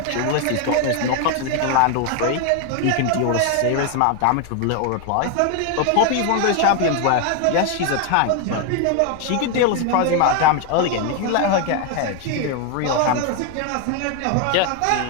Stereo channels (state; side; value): different; both; correlation 0.01